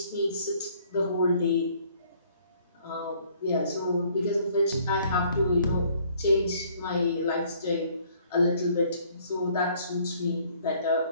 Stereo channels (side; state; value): both; inverted; correlation -0.61